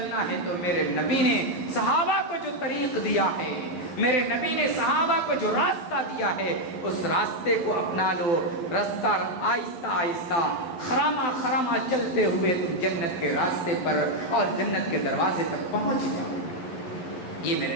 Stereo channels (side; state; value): right; late; 11 ms